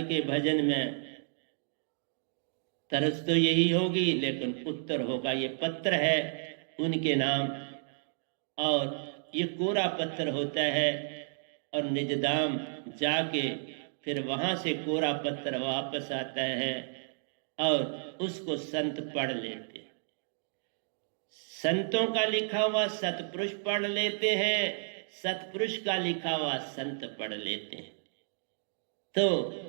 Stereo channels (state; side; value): silent; left; digital silence